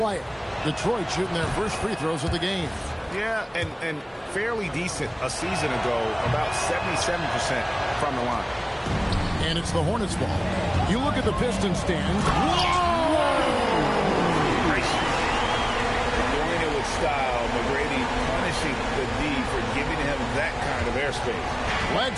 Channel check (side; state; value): both; identical; correlation 1.00